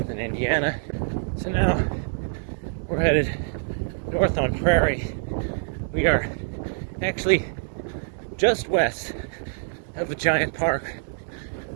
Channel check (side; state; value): left; silent; digital silence